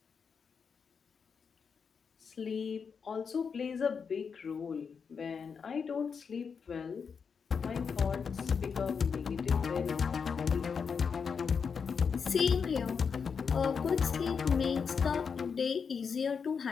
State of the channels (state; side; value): quieter; right; 6.0 dB